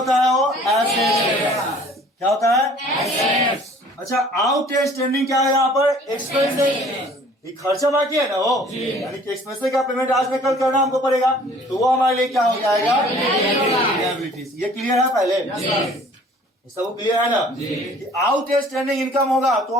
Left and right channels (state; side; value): normal; both; correlation 0.53